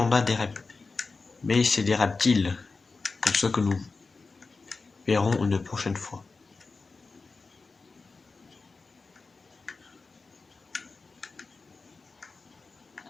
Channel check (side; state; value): right; quieter; 4.1 dB